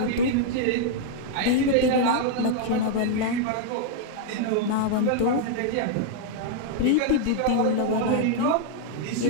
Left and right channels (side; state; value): both; different; correlation 0.00